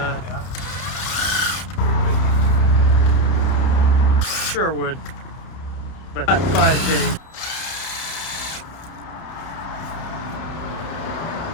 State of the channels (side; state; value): right; late; 30 ms